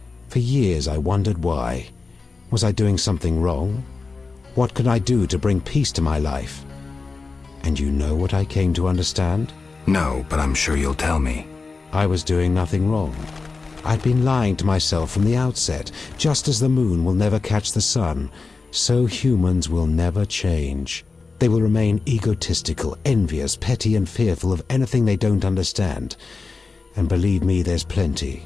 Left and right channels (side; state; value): right; quieter; 4.2 dB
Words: For years I wondered why. Was I doing something wrong? What could I do to bring peace to my life? And you know what I came to understand? No, but I'm sure you'll tell me. I was doing nothing wrong. I'd been lying to myself from the outset. Just as the moon will never catch the sun, so humans will never change. They will remain egotistical, envious, petty, and fearful of anything they don't understand. And believe me, there's plenty.